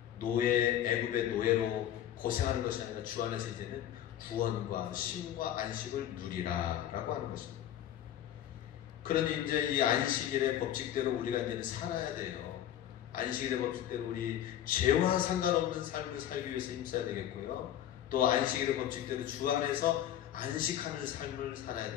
애굽의 노예로 고생하는 것이 아니라 주 안에서 이제는 구원과 쉼과 안식을 누리라라고 하는 것입니다. 그러니 이제 이 안식일의 법칙대로 우리가 이제는 살아야 돼요. 안식일의 법칙대로 우리 죄와 상관없는 삶을 살기 위해서 힘써야 되겠고요. 또 안식일의 법칙대로 주 안에서 안식하는 삶을 살아야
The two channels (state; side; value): quieter; right; 11.4 dB